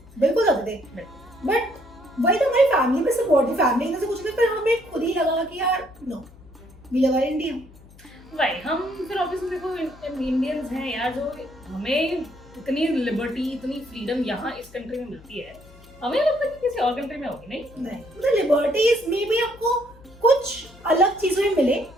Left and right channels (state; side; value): noise; left; hum, 23 dB below the sound